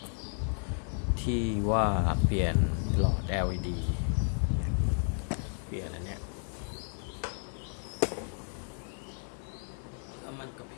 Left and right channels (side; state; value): right; silent; 56 dB below the other